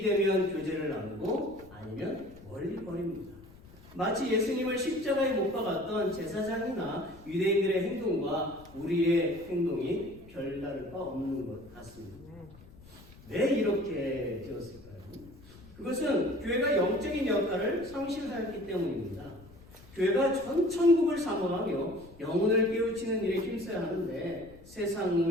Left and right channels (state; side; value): noise; left; rumble, 21 dB below the sound